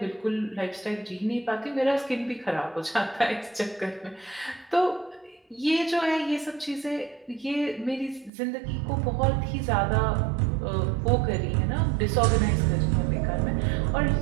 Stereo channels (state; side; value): drops out; left; at 8.3 s